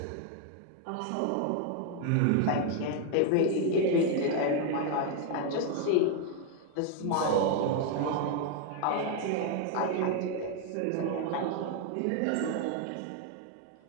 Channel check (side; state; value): both; different; correlation 0.01